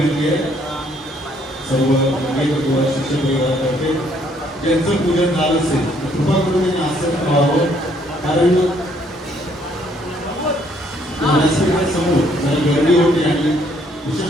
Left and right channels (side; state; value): both; normal; correlation 0.66